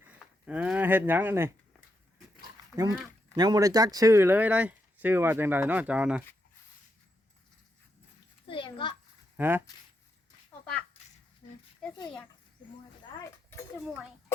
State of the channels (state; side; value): normal; both; correlation 0.82